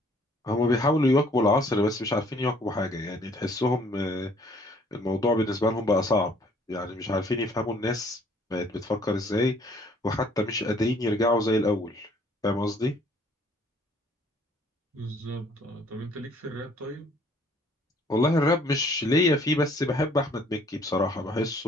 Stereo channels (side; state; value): both; normal; correlation 0.60